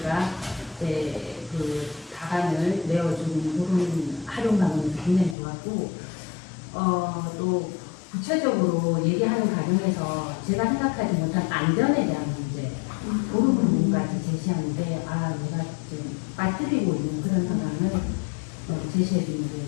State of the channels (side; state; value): right; drops out; at 5.4 s